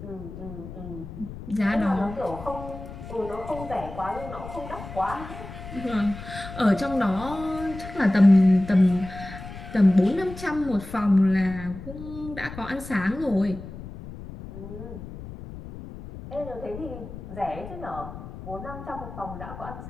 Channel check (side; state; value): left; noise; rumble, 12 dB below the sound